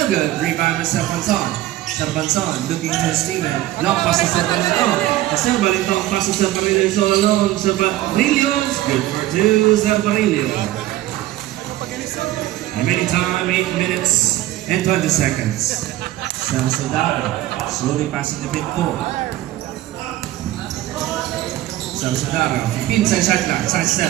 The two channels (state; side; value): quieter; left; 15.2 dB